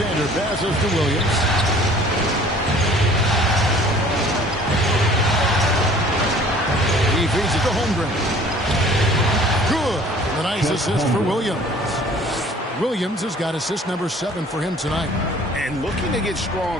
passes to Williams. He feeds it to Holmgren. Good. A nice assist for Williams. Williams has got assist number 7 for him tonight. And looking to get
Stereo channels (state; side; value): normal; both; correlation 0.51